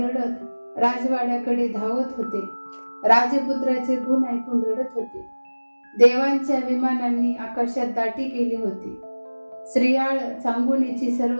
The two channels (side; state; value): both; inverted; correlation -1.00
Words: राजवाड्याकडे धावत होते. राजपुत्राचे गुण ऐकून रडत होते. देवांच्या विमानांनी आकाशात दाटी केली होती. श्रीयाळ चांगुनीची